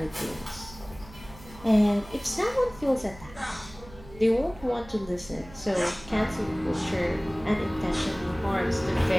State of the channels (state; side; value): noise; right; hum, 19 dB below the sound